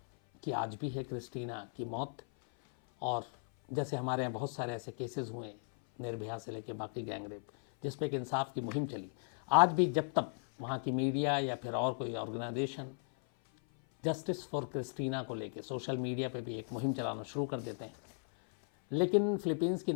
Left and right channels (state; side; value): silent; right; 53 dB below the other